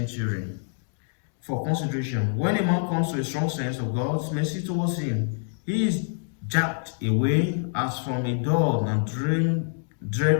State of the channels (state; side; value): silent; right; digital silence